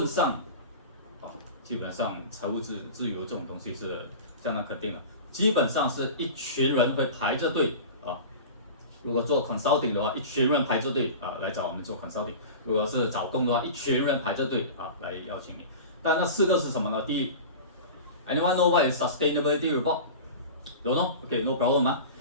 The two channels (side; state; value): both; inverted; correlation -0.33